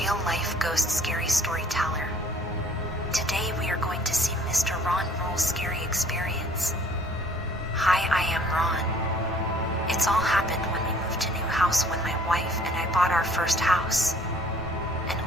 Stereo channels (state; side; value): normal; both; correlation 0.56